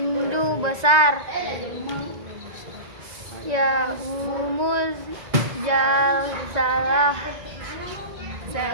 besar. Yaumul Jalsalah,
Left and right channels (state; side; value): late; left; 2.0 ms